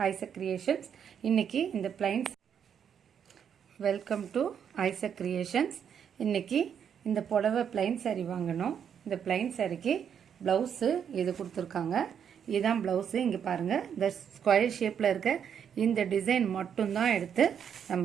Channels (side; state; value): left; quieter; 8.1 dB